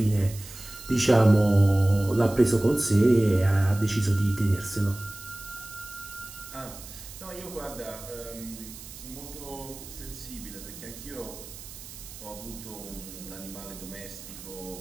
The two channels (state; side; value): noise; right; hiss, 15 dB below the sound